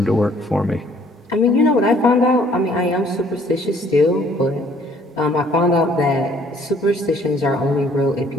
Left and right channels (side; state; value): both; normal; correlation 0.60